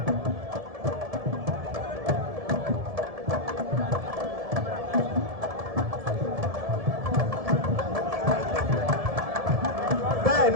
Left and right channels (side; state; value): left; late; 1.7 ms